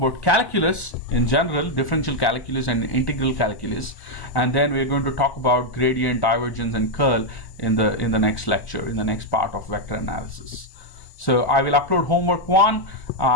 calculus in general, differential calculus and integral calculus, and then we're going to talk about gradient, divergence, and curl in the next lecture, in the next part of vector analysis. So I will upload homework 1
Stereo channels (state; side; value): late; right; 1.1 ms